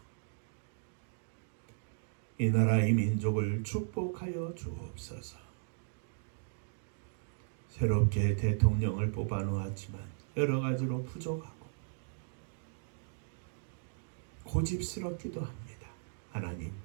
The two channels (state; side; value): silent; left; digital silence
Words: 이 나라 이 민족을 축복하여 주옵소서. 새롭게 대통령을 뽑아 놓았지만 여러 가지로 부족하고 고집스럽기도 합니다. 하나님,